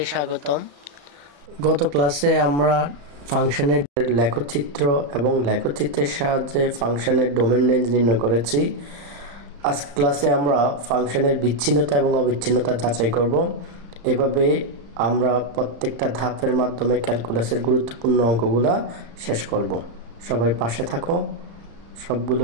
স্বাগতম। গত ক্লাসে আমরা ফাংশনের লেখচিত্র এবং লেখচিত্রের সাহায্যে ফাংশনের ডোমেন রেঞ্জ নির্ণয় করেছি। আজকে ক্লাসে আমরা ফাংশনের বিচ্ছিন্নতা এবং অবিচ্ছিন্নতা যাচাই করব। এভাবে আমরা প্রত্যেকটা ধাপের মাধ্যমে ক্যালকুলাসের গুরুত্বপূর্ণ অঙ্কগুলা শেষ করব। সবাই পাশে থাকো, সবগুলো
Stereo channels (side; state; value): left; late; 35 ms